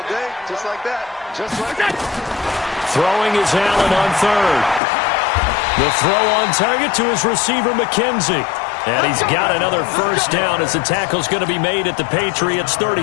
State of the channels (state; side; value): drops out; right; at 4.8 s